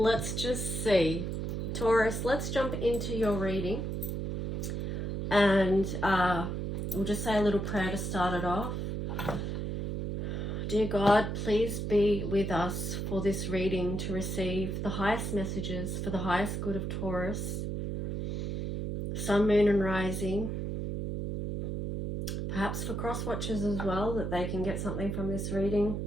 just see. Taurus, let's jump into your reading, and we'll just say a little prayer to start it off. Dear God, please be with us for this reading to receive the highest messages for the highest good of Taurus, Sun, Moon and Rising, perhaps for cross watchers as well, that they can get something from this reading.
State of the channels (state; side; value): noise; right; hum, 3 dB below the sound